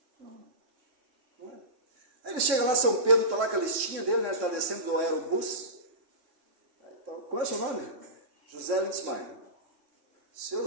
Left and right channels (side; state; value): left; late; 3.7 ms